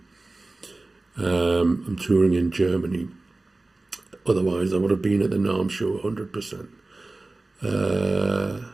I'm touring in Germany. Otherwise, I would have been at the NARM show 100%.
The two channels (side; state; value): left; quieter; 3.1 dB